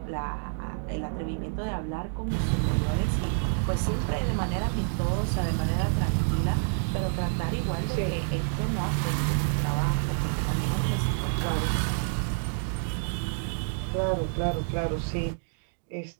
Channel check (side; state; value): left; silent; digital silence